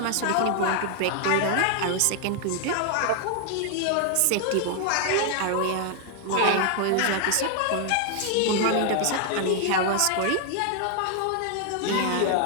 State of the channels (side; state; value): both; different; correlation 0.00